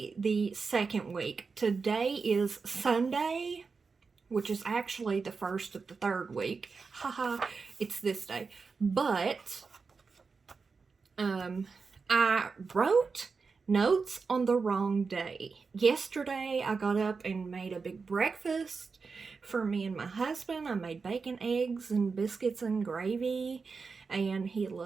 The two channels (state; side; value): quieter; left; 4.8 dB